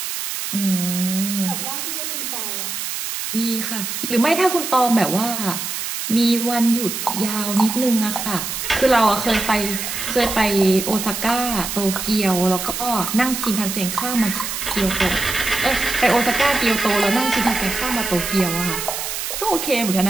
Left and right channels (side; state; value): right; noise; hiss, 4 dB below the sound